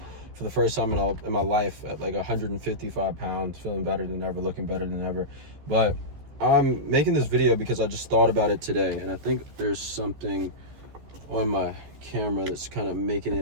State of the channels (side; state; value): left; late; 14 ms